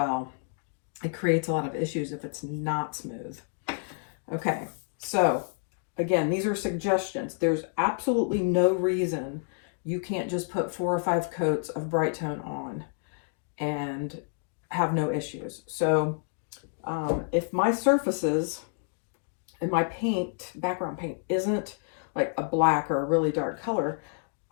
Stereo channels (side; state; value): right; silent; 59 dB below the other